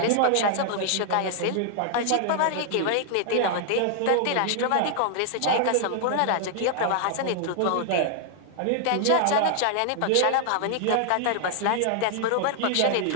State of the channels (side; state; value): both; different; correlation 0.00